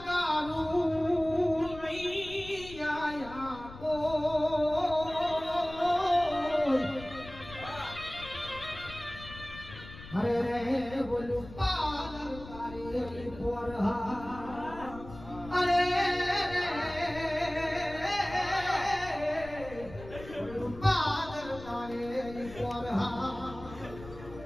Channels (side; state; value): left; noise; rumble, 15 dB below the sound